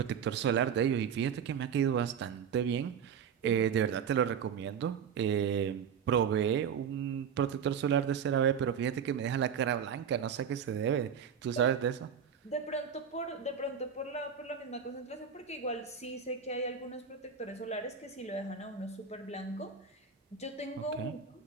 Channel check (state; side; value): quieter; left; 7.3 dB